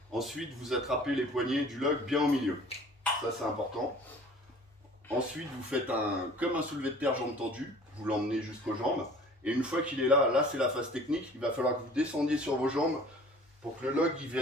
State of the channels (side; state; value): both; normal; correlation 0.48